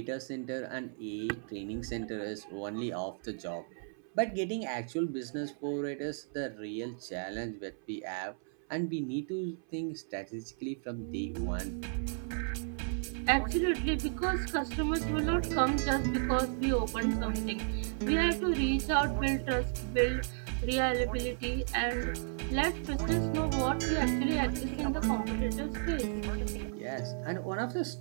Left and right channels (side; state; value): left; silent; 55 dB below the other